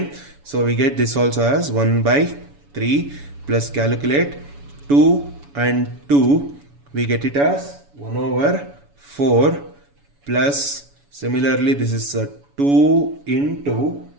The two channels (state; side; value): late; left; 7.1 ms